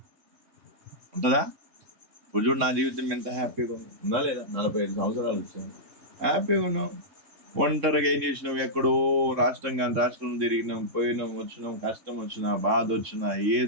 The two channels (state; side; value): late; left; 3.6 ms